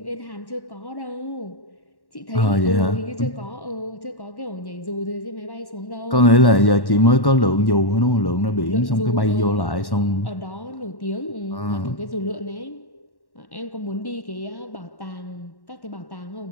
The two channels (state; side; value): late; right; 1.1 ms